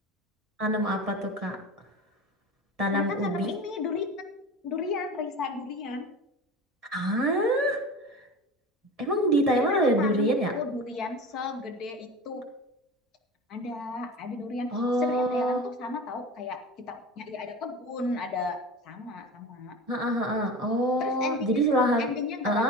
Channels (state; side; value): normal; both; correlation 0.32